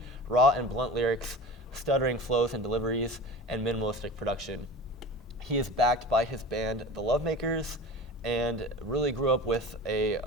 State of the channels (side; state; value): both; normal; correlation 0.34